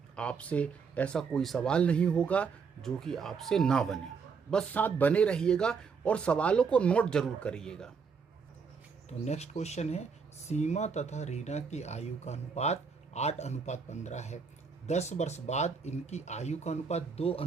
आपसे ऐसा कोई सवाल नहीं होगा जो कि आपसे ना बने, बस साथ बने रहिएगा और सवालों को नोट जरूर करिएगा। तो नेक्स्ट क्वेश्चन है, सीमा तथा रीना की आयु का अनुपात 8:15 है। 10 वर्ष बाद इनकी आयु का अनुपात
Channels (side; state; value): left; quieter; 5.6 dB